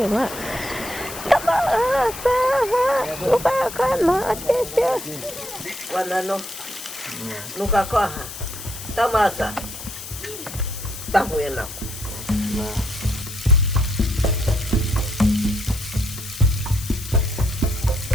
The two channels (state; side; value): noise; left; hiss, 11 dB below the sound